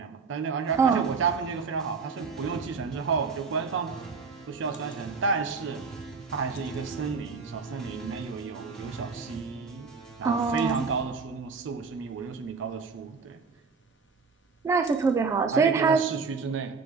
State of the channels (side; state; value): left; quieter; 4.9 dB